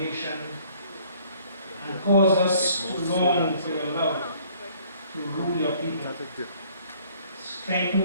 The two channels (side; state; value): both; inverted; correlation -0.58